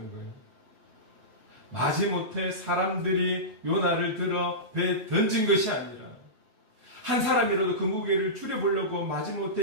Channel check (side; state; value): left; late; 7.9 ms